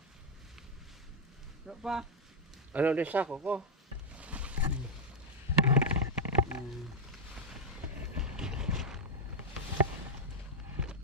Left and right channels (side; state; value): both; normal; correlation 0.00